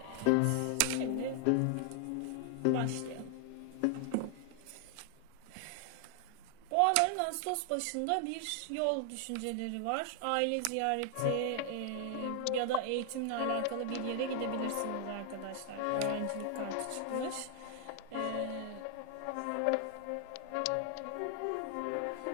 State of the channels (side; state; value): both; different; correlation 0.00